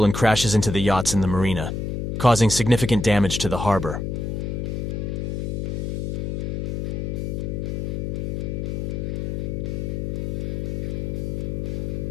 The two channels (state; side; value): noise; left; hum, 2 dB below the sound